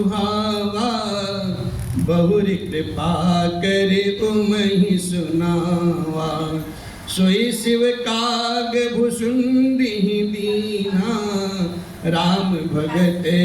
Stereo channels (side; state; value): both; identical; correlation 1.00